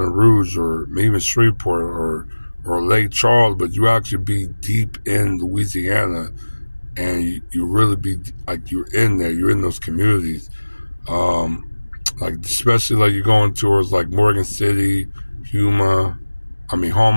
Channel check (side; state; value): both; inverted; correlation -1.00